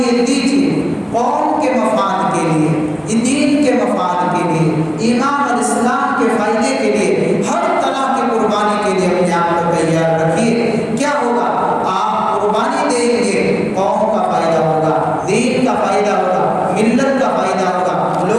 دیجیے، قوم کے مفاد کے لیے، دین کے مفاد کے لیے، ایمان اور اسلام کے فائدے کے لیے، ہر طرح کی قربانی کے لیے اپنے آپ کو تیار رکھیے۔ کیا ہوگا؟ آپ قربانی دیں گے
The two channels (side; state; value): both; identical; correlation 1.00